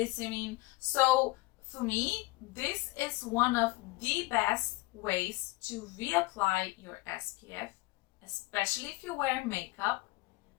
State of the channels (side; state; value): right; quieter; 22.1 dB